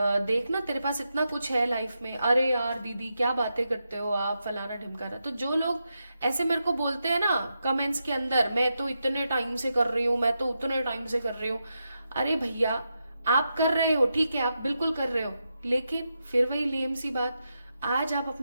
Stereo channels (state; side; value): inverted; both; correlation -0.86